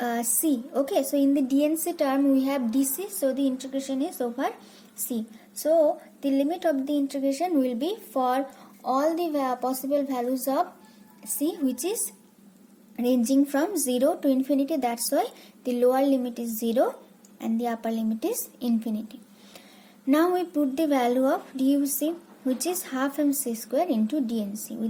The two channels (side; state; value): both; identical; correlation 1.00